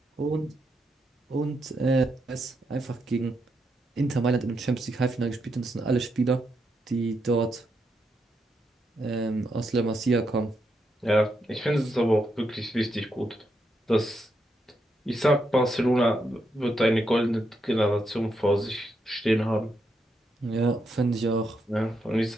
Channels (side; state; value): both; normal; correlation 0.82